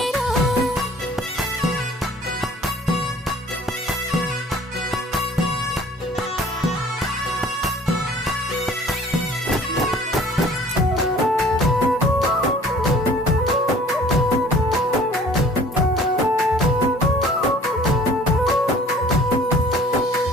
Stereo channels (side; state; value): both; normal; correlation 0.51